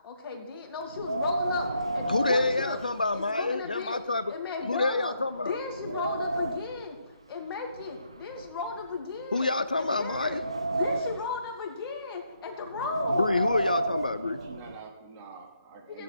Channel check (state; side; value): inverted; both; correlation -0.75